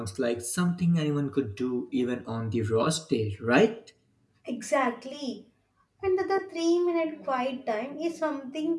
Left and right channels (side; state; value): both; identical; correlation 1.00